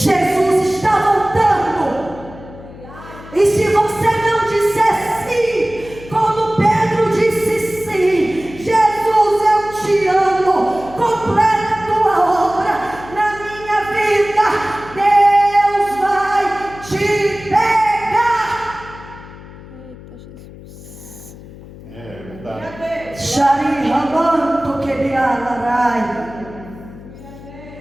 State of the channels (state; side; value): noise; left; hum, 17 dB below the sound